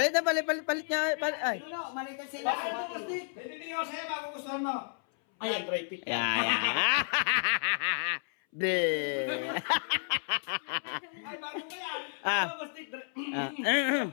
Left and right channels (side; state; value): right; silent; 57 dB below the other